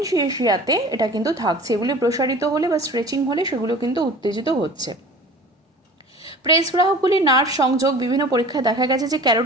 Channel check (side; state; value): both; normal; correlation 0.42